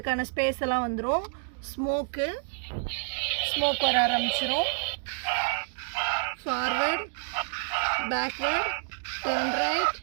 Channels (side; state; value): left; silent; 59 dB below the other